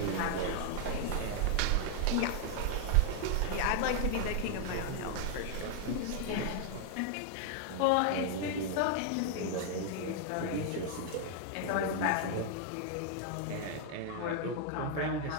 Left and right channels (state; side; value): different; both; correlation 0.00